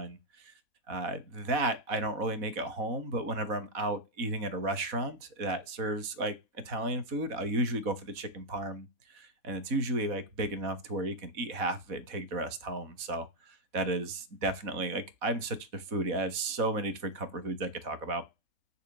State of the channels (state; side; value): late; left; 4.0 ms